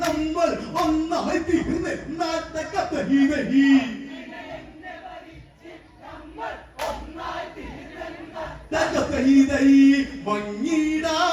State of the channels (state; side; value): identical; both; correlation 1.00